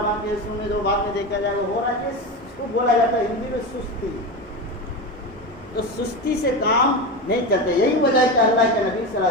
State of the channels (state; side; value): normal; both; correlation 0.21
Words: باقی ہے، سونے دو، بعد میں دیکھا جائے گا، ہو رہا ہے، اس کو بولا جاتا ہے ہندی میں سستی۔ تو سستی سے کام نہیں چلتے، یہی وجہ ہے کہ اللہ کے نبی صلی اللہ